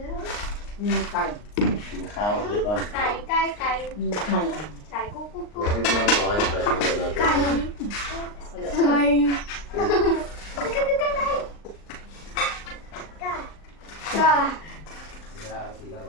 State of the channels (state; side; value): late; right; 39 ms